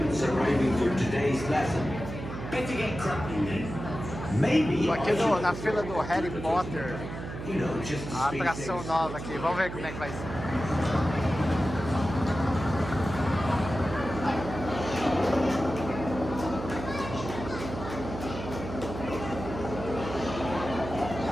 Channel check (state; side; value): noise; right; hum, 8 dB below the sound